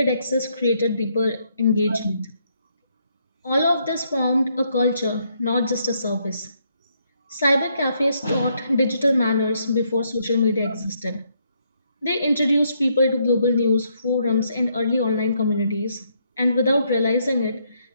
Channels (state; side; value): inverted; both; correlation -0.74